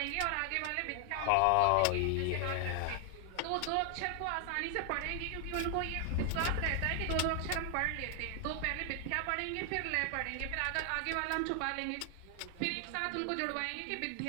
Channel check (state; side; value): different; both; correlation 0.00